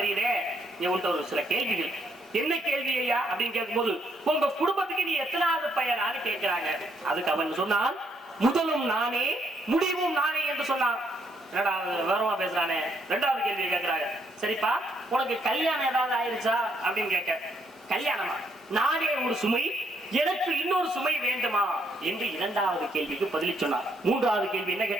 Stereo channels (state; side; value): normal; both; correlation 0.74